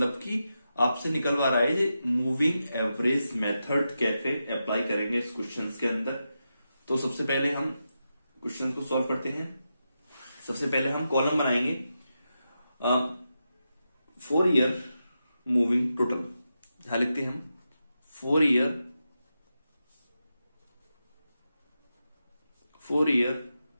कि आपसे निकलवा रहा है ये मूविंग एवरेज मेथड कैसे अप्लाई करेंगे इस क्वेश्चन के अंदर। तो सबसे पहले हम क्वेश्चन को सॉल्व करते हैं। सबसे पहले हम कॉलम बनाएंगे 4 ईयर मूविंग टोटल, यहां लिखते हैं हम 4 ईयर,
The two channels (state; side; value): inverted; both; correlation -0.88